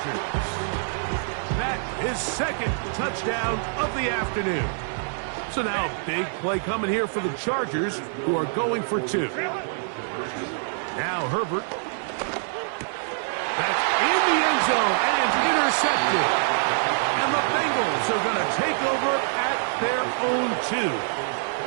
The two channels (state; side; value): silent; left; digital silence